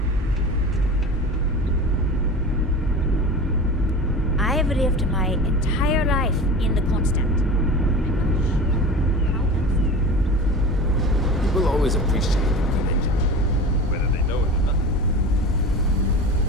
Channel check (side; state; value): both; normal; correlation 0.33